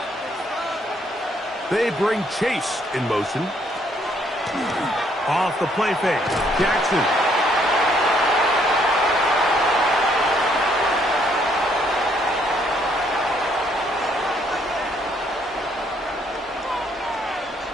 They bring Chase in motion. Off the play fake. Jackson.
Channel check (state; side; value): normal; both; correlation 0.68